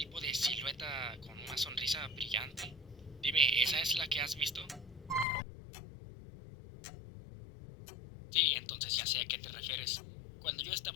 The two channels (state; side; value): drops out; right; at 5.2 s